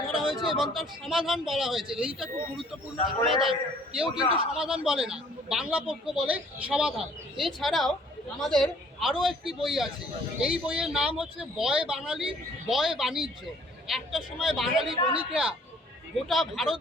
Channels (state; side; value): normal; both; correlation 0.57